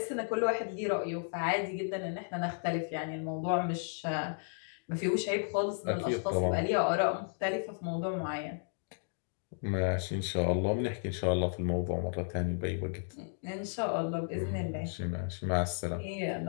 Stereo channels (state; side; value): silent; right; digital silence